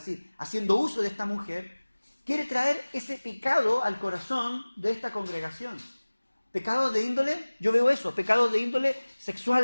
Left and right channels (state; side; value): inverted; both; correlation -1.00